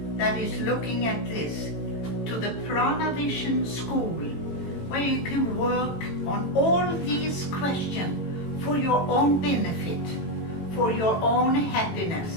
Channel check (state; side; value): late; right; 18 ms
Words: that is looking at this to the Prana Vision School, where you can work on all these questions for your own benefit, for your own